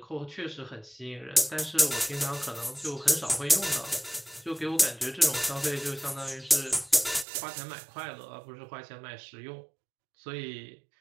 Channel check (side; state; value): left; drops out; at 7.2 s